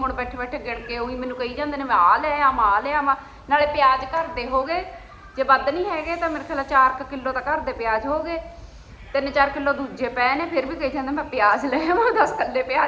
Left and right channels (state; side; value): identical; both; correlation 1.00